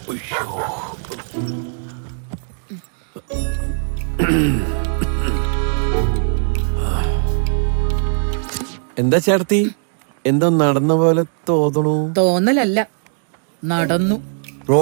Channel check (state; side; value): silent; left; digital silence